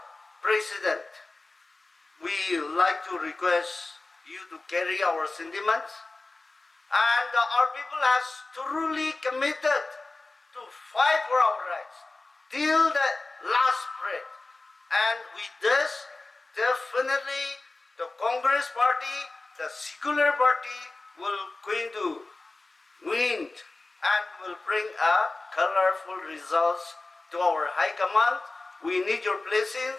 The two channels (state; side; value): quieter; right; 3.3 dB